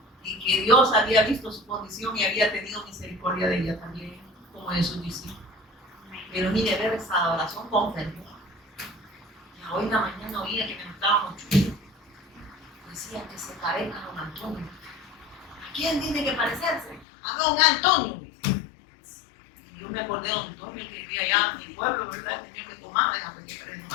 Y que Dios había visto su condición y había tenido misericordia de ella también, como de sus discípulos. Pero mire, ver esa adoración con fervor. Hoy en la mañana oía que me gustaba mucho. Decía que se parezca a don Antonio. ¿A quién tiene que parecerse? A don Antonio. Y yo me acordé de don Antonio, que vivía allá en mi pueblo, ¿verdad? El señor que tomaba, déjame que parezca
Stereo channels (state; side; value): drops out; right; at 17.1 s